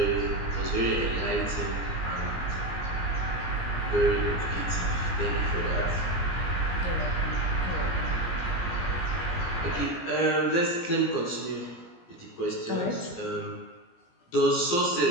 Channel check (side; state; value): right; late; 17 ms